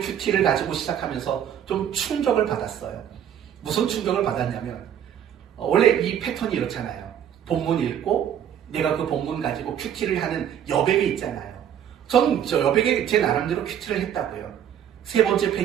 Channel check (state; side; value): quieter; left; 9.6 dB